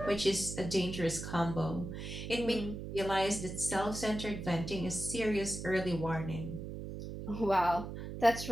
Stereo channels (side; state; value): right; noise; hum, 7 dB below the sound